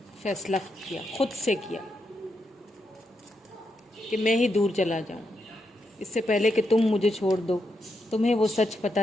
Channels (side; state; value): both; normal; correlation 0.82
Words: फैसला किया, खुद से किया, कि मैं ही दूर चला जाऊं, इससे पहले कि तुम मुझे छोड़ दो, तुम्हें वो सच